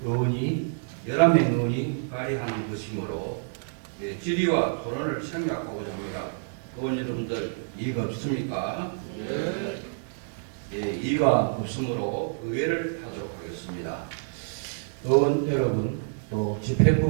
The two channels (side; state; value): left; silent; digital silence